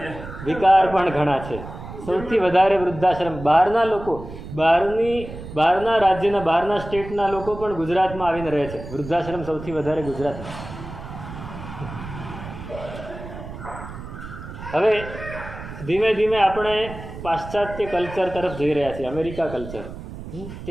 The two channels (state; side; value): noise; right; rumble, 12 dB below the sound